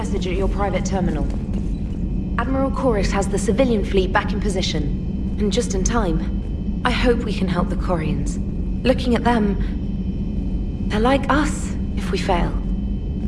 at your private terminal. Admiral Kurus has the civilian fleet back in position, and just in time. I hope we can help the Quarians. Looking at them, they're like us if we fail.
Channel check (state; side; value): identical; both; correlation 1.00